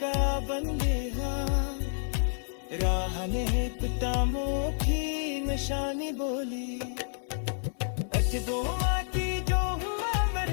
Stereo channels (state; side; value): silent; right; digital silence